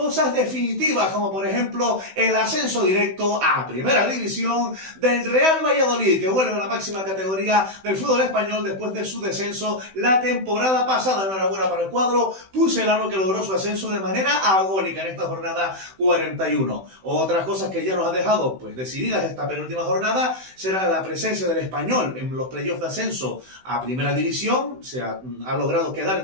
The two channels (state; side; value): late; left; 16 ms